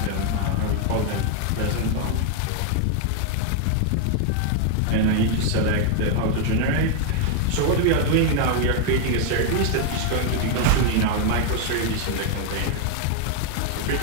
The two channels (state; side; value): different; both; correlation 0.00